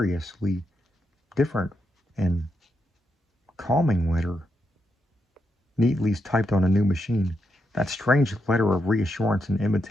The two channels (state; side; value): normal; both; correlation 0.82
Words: different and calming letter, neatly typed on a new machine. That strange letter of reassurance and